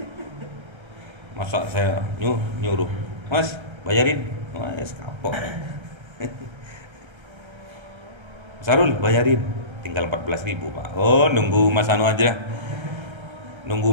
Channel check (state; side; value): late; left; 1.3 ms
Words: masa saya nyuruh mas bayarin, mas kapok. Sarul bayarin, tinggal 14.000 pak. Oh nunggu mas Anu aja, nunggu